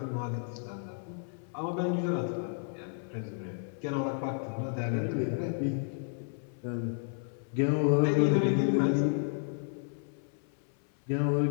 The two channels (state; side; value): silent; right; 56 dB below the other